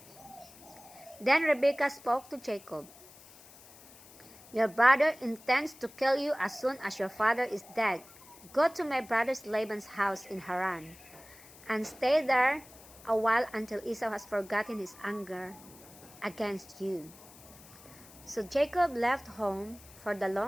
Then Rebekah spoke to Jacob. "Your brother intends to kill you as soon as your father is dead. Go to my brother Laban's house in Haran, and stay there a while until Esau has forgotten his anger against you." So Jacob left home for the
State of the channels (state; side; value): noise; left; hiss, 21 dB below the sound